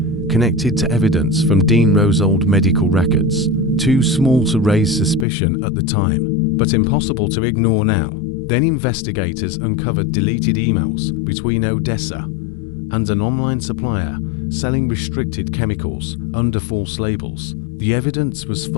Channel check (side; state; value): right; drops out; at 5.2 s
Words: connected to evidence from Dean Rowe's old medical records. Too small to raise suspicion at the time, but impossible to ignore now. Then investigators uncovered deleted emails between Odessa and an online supplier selling restricted chemicals under false labels. The evidence was